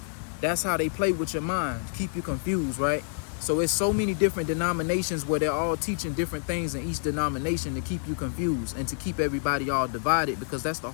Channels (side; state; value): right; silent; 59 dB below the other